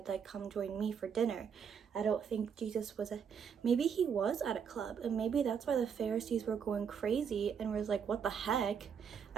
like, come join me for dinner. I don't think Jesus was maybe he was at a club, and maybe that's why the Pharisees were going crazy and was like, what the heck?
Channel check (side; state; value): left; quieter; 7.1 dB